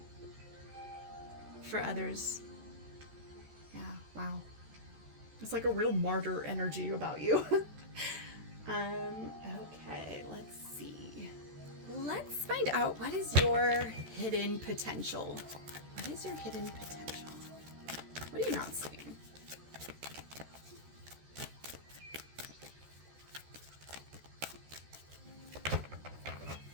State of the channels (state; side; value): late; left; 14 ms